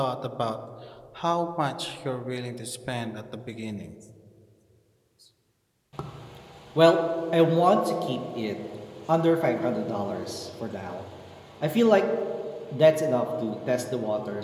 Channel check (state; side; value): identical; both; correlation 1.00